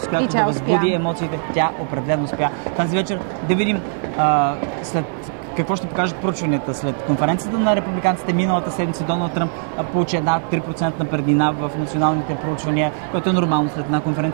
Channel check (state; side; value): silent; left; digital silence